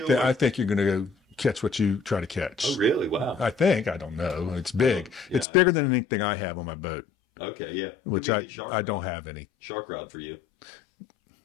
think you're going to go catch what you try to catch. Oh, really? Wow. I don't know. It's big. Yeah. It's bigger than anything I have on my boat. Okay, yeah. Which I don't have any. Shark rod for you.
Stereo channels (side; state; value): right; drops out; at 5.5 s